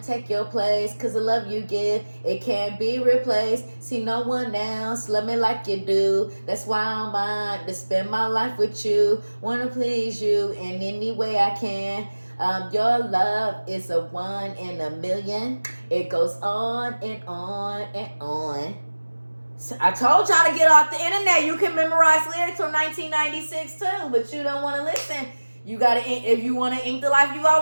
take your place, cause the love you give, it can't be replaced. See no one else love me like you do. That's why I'm mine to spend my life with you. Wanna please you in any way I can. Your love is a 1 in a million. It goes on and on and on. I told y'all to get off the internet. You can memorize lyrics from 1996 too, but you don't want to listen. You gotta, if you want to ink the life you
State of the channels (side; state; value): both; inverted; correlation -1.00